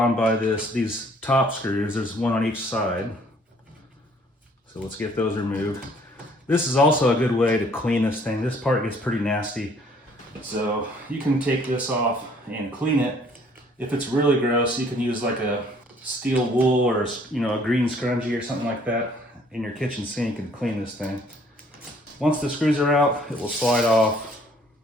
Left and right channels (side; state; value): both; normal; correlation 0.60